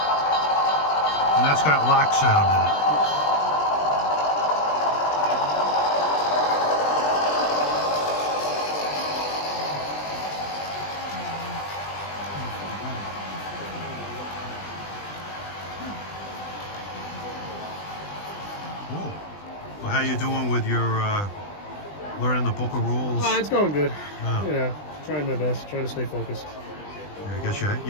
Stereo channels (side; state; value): right; late; 20 ms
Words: And that's got lock sound in it. Cool. Well, how you doing with your learning the book of rules? It's going good. Oh. You know, trying my best, trying to stay focused. I guess you